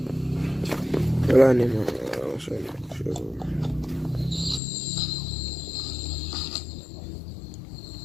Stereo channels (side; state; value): right; drops out; at 4.6 s